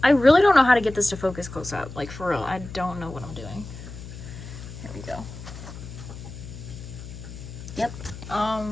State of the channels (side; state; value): left; noise; hum, 13 dB below the sound